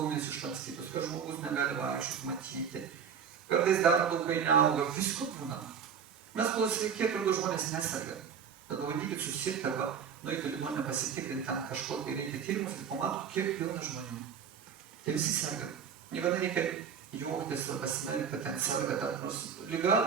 išlankstytos, kad žmogus negali vaikščioti, matyti. Kartais dar laukai neauga, visko būna. Mes kol sveiki, atrodo, žmonės neserga. Bet pabandykit susirgti arba nueiti ligoninę pasitikrinti, ten kažko, kai reikia tyrimus ir pamatot, kiek pilna žmonių. Tai visi serga. Niekada reikia juoktis ar pasimerkti, kad ten serga, dar nors liga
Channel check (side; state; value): left; quieter; 7.2 dB